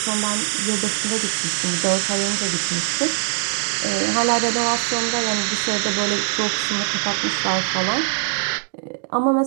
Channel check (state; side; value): silent; left; digital silence